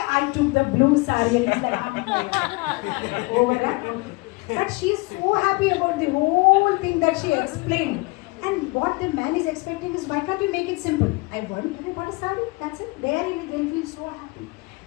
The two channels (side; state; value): right; quieter; 26.0 dB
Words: I took the blue sari. And he's like, over that. Okay. But she is so happy about the whole thing that she explained. And what the man is expecting is, why can't you make it simple? I bought a sari, that's it. They'll feel so happy.